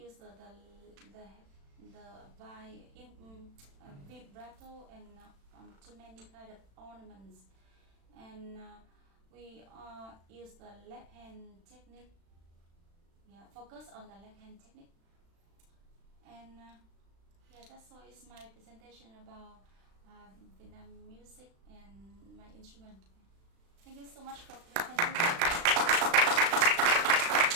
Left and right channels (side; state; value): left; late; 36 ms